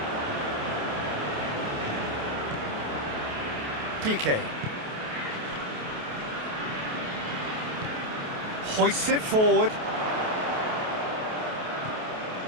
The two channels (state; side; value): late; left; 28 ms